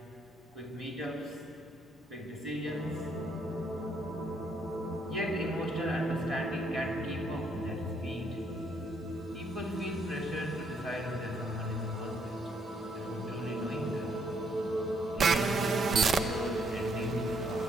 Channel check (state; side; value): normal; both; correlation 0.71